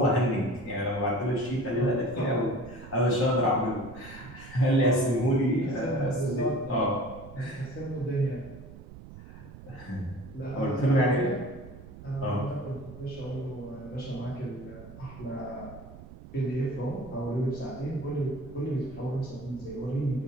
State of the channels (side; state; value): right; noise; rumble, 15 dB below the sound